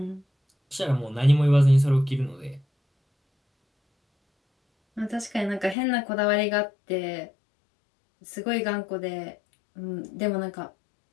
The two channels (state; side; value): drops out; right; at 5.8 s